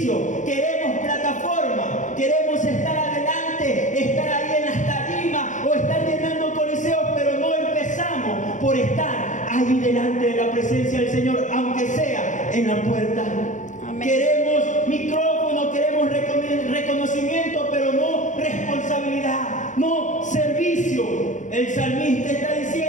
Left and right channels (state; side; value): late; right; 0.36 ms